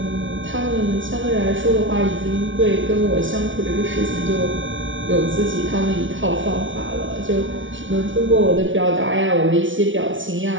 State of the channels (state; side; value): late; left; 0.56 ms